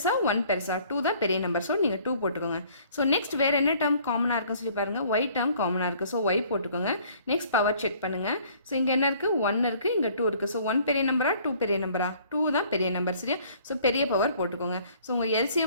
1 பெருசா? 2 தான் பெரிய நம்பர். ஸோ நீங்கள் 2 போட்டுக்கோங்க. ஸோ நெக்ஸ்ட் வேறு என்ன டேர்ம் காமனாக இருக்குன்னு சொல்லி பாருங்கள். ஒய் டேர்ம் காமனாக இருக்குது. ஸோ ஒய் போட்டுக்கோங்க. நெக்ஸ்ட் பவர் செக் பண்ணுங்கள். ஸோ இங்கே என்ன இருக்குது? 1 இருக்குது, இங்கே 2 இருக்குது. ஸோ 1 பெரிய நம்பரா 2 பெரிய நம்பரா? 2 தான் பெரிய நம்பர். சரியா? ஸோ பெரிய பவர் போட்டுக்கோங்க. ஸோ உங்கள்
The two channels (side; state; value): both; inverted; correlation -0.57